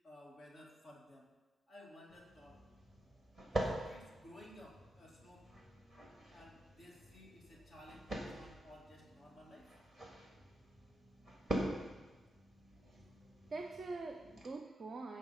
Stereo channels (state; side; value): normal; both; correlation 0.83